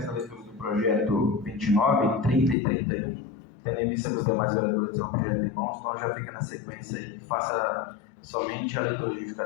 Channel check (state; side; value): drops out; right; at 2.6 s